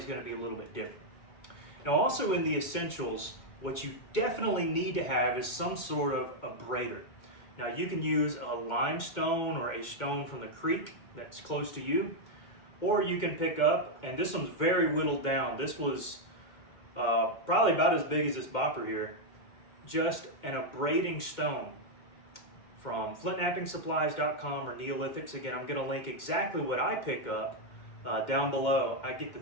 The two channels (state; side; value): late; right; 2.2 ms